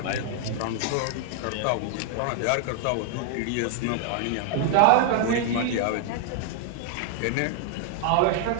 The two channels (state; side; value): different; both; correlation 0.00